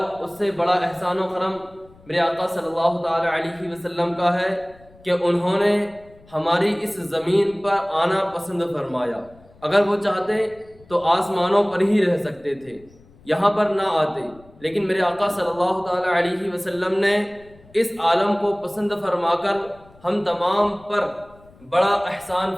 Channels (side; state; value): left; noise; rumble, 26 dB below the sound